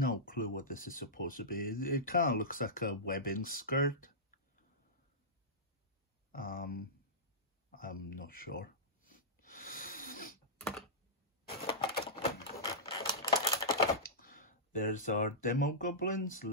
clue what this is supposed to be. It kind of looks like a webbing skirt. I'm not sure. There's our Demo Goblin's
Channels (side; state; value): both; normal; correlation -0.14